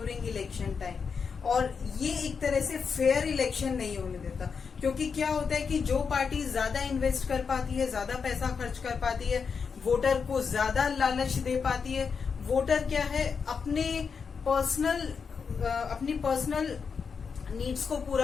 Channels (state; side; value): quieter; right; 5.8 dB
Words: इलेक्शन टाइम, और ये एक तरह से फेयर इलेक्शन नहीं होने देता। क्योंकि क्या होता है कि जो पार्टी ज्यादा इन्वेस्ट कर पाती है, ज्यादा पैसा खर्च कर पाती है, वोटर को ज्यादा लालच दे पाती है, वोटर क्या है अपनी पर्सनल नीड्स को